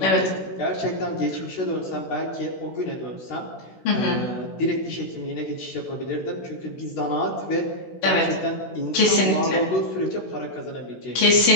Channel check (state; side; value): late; right; 16 ms